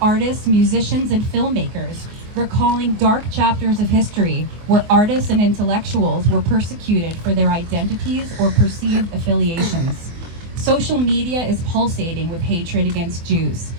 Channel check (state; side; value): late; left; 24 ms